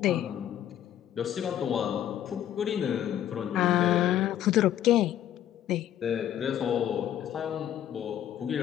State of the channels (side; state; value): right; quieter; 11.1 dB